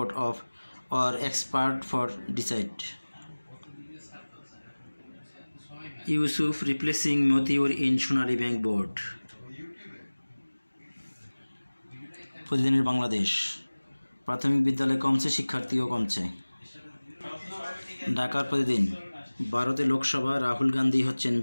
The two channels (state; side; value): inverted; both; correlation -1.00